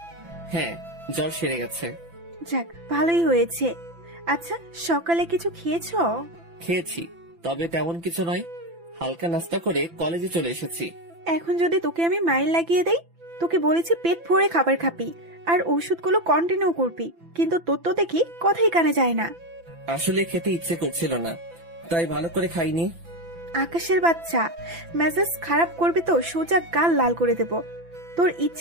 হ্যাঁ, জ্বর সেরে গেছে। যাক ভালোই হয়েছে। আচ্ছা সকালে কিছু খেয়েছো? খেয়েছি, তবে তেমন কিছু নয়। হালকা নাস্তা করে কলেজে চলে এসেছি। এখন যদি তোকে আমি মাইল লাগিয়ে দেই, তোকে বলেছি পেট ভরে খাবার খাবি আর ওষুধগুলো কন্টিনিউ করবি, কিন্তু তোর তো দেখি কথাই কানে যায় না। আসলে খেতে ইচ্ছে করছিল না, তাই ভালো করে খাইনি। আকাশের বাচ্চা, মেজাজ খারাপ করবি তো সোজা গাল লাল করে দেব। তোর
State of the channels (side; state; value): left; late; 5.9 ms